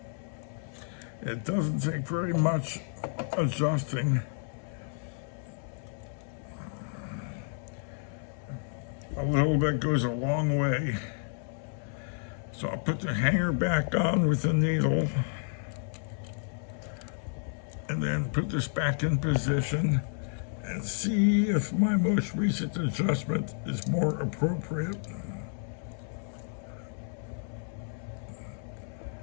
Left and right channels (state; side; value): silent; right; 57 dB below the other